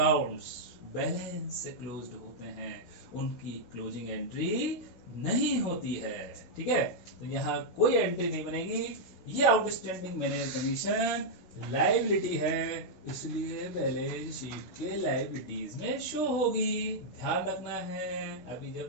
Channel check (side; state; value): right; late; 16 ms